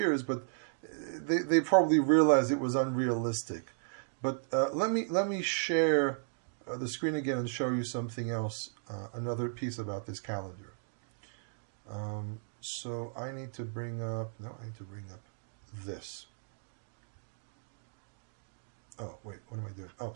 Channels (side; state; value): left; silent; digital silence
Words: but they probably realized it was unrealistic. But let me share the screen again and show you something else, another piece about this calendar. So I need to bring up this. Oh, wait, what am I doing? Oh,